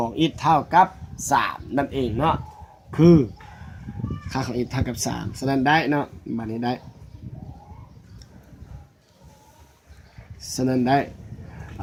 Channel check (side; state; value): both; identical; correlation 1.00